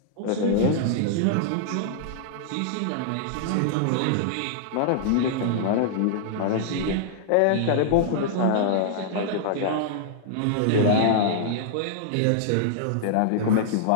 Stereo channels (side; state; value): both; different; correlation -0.01